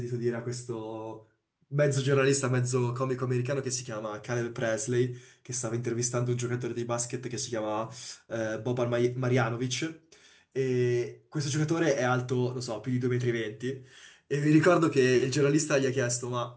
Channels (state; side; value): identical; both; correlation 1.00